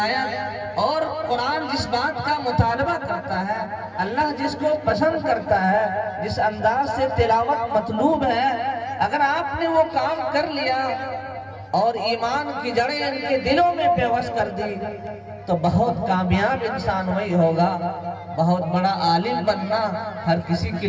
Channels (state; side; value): identical; both; correlation 1.00